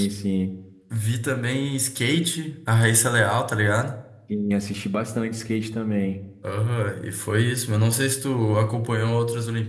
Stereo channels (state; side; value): identical; both; correlation 1.00